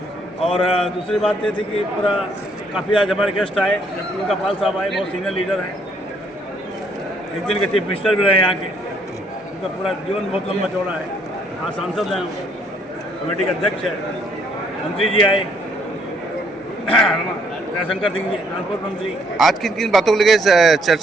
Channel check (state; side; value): normal; both; correlation 0.67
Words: और दूसरी बात ये थी कि पूरा काफ़ी आज हमारे गेस्ट आए, उनका पाल साहब आए, बहुत सीनियर लीडर हैं, एक दिन के चीफ मिनिस्टर भी रहे यहाँ के, उनका पूरा जीवन बहुत लंबा चौड़ा है। हाँ, सांसद हैं, कमेटी के अध्यक्ष है, मंत्री जी आए, दयाशंकर सिंह जी ट्रांसपोर्ट मंत्री। आज किन किन बातों को लेकर